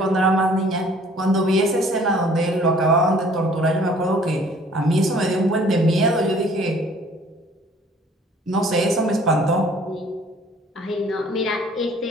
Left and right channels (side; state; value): both; normal; correlation 0.55